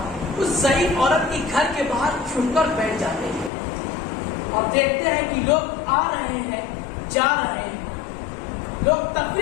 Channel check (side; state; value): right; drops out; at 3.5 s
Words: اس ضعیف عورت کے گھر کے باہر چھپ کر بیٹھ جاتے ہیں، اور دیکھتے ہیں کہ لوگ آ رہے ہیں جا رہے ہیں، لوگ